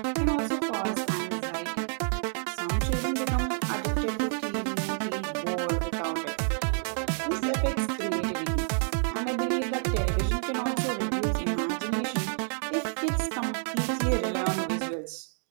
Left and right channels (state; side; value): silent; left; digital silence